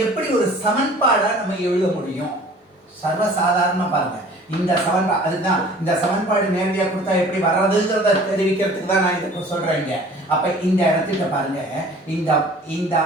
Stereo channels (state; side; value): normal; both; correlation 0.48